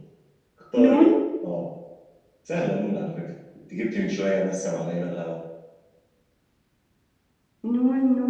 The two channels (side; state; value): both; identical; correlation 1.00